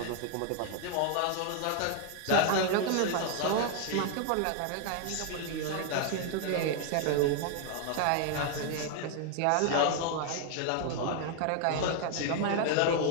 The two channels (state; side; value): different; both; correlation 0.00